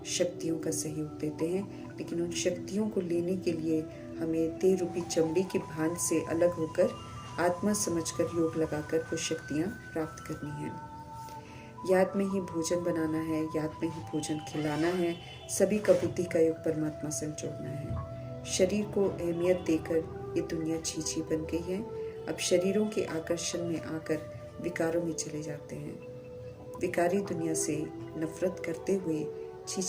शक्तियों का सहयोग देते हैं, लेकिन उन शक्तियों को लेने के लिए हमें देह रूपी चमड़ी के भान से अलग होकर आत्मा समझकर योग लगाकर वो शक्तियाँ प्राप्त करनी है। याद में ही भोजन बनाना है, याद में ही भोजन खिलाना है। सभी का बुद्धि का योग परमात्मा से जोड़ना है। शरीर को अहमियत देकर ये दुनिया छीछी बन गई है। अब शरीरों के आकर्षण में आकर विकारों में चले जाते हैं। विकारी दुनिया से नफरत करते हुए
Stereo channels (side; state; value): both; identical; correlation 1.00